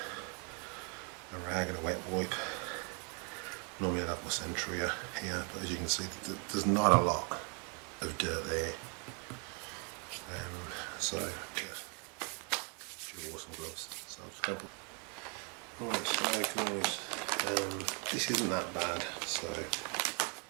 a rag and a wet wipe. Normally I'd have my Sentria here, but as you can see, there's not a lot of dirt there. So yeah, dual awesome gloves. So I'm just going to put. Right, so guys, this isn't that bad. So I'm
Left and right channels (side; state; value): left; quieter; 36.0 dB